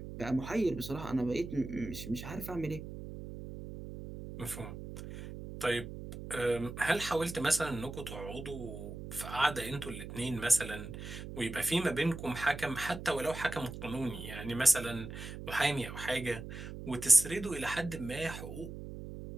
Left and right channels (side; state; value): right; noise; hum, 10 dB below the sound